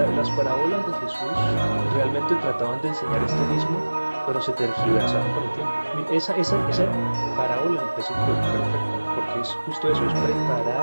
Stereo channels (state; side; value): inverted; both; correlation -1.00